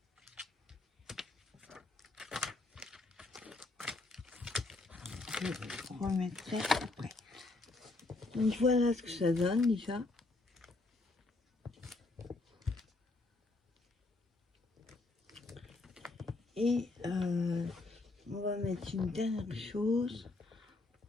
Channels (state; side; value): quieter; right; 3.3 dB